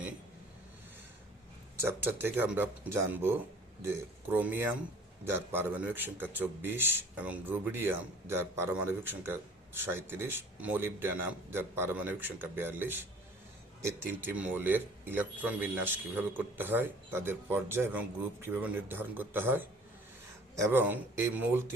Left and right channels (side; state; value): both; normal; correlation 0.51